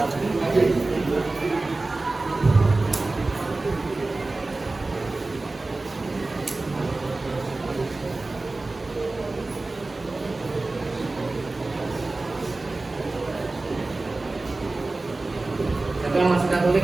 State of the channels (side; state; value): left; quieter; 3.2 dB